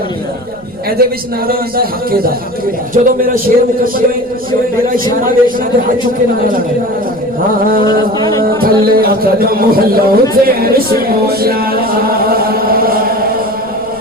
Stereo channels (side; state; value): right; noise; rumble, 25 dB below the sound